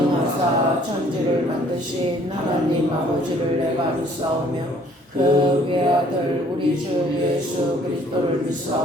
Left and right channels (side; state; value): both; normal; correlation 0.59